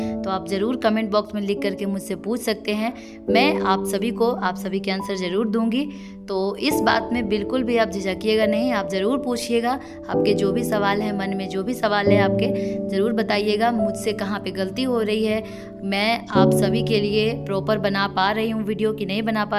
तो आप ज़रूर कमेंट बॉक्स में लिख करके मुझसे पूछ सकते हैं। मैं आप सभी के आंसर ज़रूर दूंगी। तो इस बात में बिल्कुल भी आप झिझकिएगा नहीं, आप ज़रूर पूछिएगा। आपके जो भी सवाल हैं, मन में जो भी सवाल है आपके, ज़रूर बताइएगा मुझसे कहाँ पे गलती हो रही है। मैं आप सभी के लिए प्रॉपर बना पा रही हूँ वीडियो कि नहीं बना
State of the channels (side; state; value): both; identical; correlation 1.00